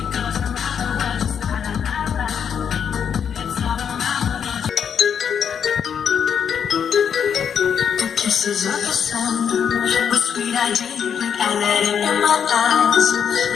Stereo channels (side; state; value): right; quieter; 7.7 dB